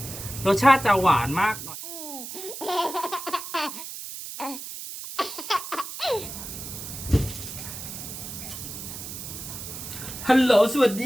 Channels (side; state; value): right; noise; hiss, 9 dB below the sound